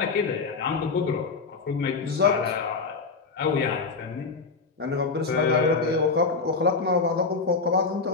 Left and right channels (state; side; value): quieter; right; 4.5 dB